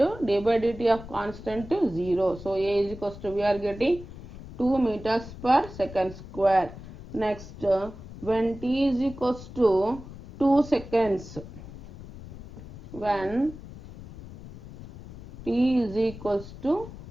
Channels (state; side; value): noise; left; rumble, 14 dB below the sound